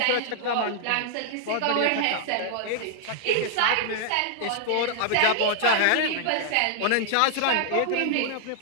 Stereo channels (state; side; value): different; both; correlation -0.01